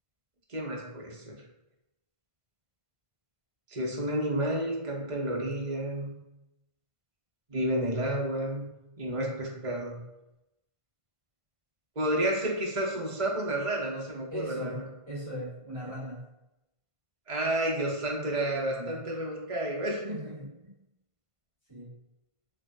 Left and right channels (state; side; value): late; left; 1.5 ms